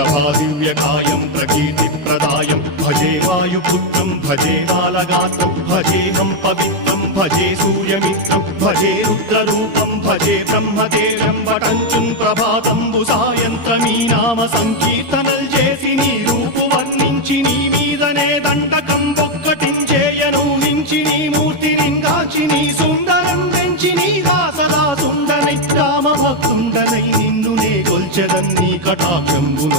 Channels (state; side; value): late; left; 13 ms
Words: प्रकीर्तिप्रदायं भजे वायुपुत्रं भजे बालगात्रं भजेऽहं पवित्रं भजे सूर्यमित्रं भजे रुद्ररूपं भजे ब्रह्मदेव्यं वटञ्चं ప్రభాతంబు సాయంత్రమీ నామ సంకీర్తనల్ చేసి నీ రూపు వర్ణించి నీ మీదనే దండకం ఒక్కటించేయను హించి నీ మూర్తిని గాంచి నీ సుందరం పెంచి నీ దాసదా సుందరై రామభక్తుండనై నిన్నునే కొల్చెదన్ని